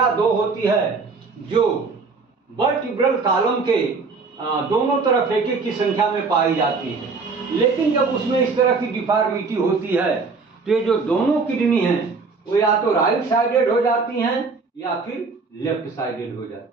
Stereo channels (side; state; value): left; quieter; 4.4 dB